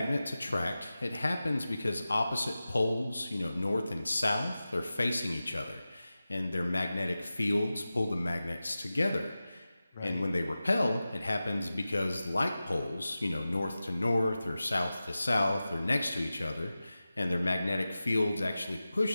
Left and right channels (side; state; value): both; inverted; correlation -0.95